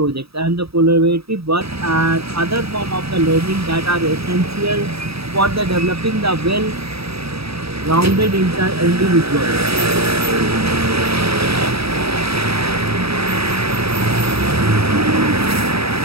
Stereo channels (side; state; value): left; late; 0.77 ms